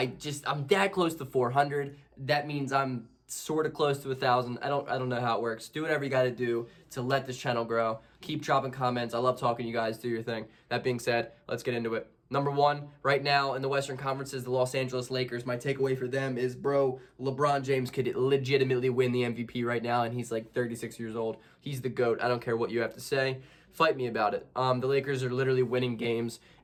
that close to 400. That means I'm sort of close to 1,000. I don't know how it works. Do whatever you got to do to let this channel grow. Keep dropping comments. I love talking to you guys. Do your thing. That being said, let's get into it. Number one, right now in the Western Conference is the Los Angeles Lakers. My takeaway for them is, bro, LeBron James could legitimately win the MVP right now, and he's like 36 years old. He's the GOAT. I don't care what you have to say. Fight me about it. The Lakers are literally winning games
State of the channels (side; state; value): both; identical; correlation 1.00